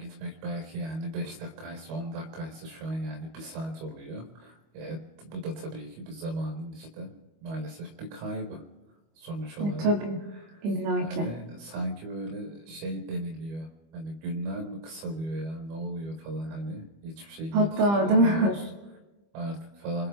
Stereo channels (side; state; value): left; late; 25 ms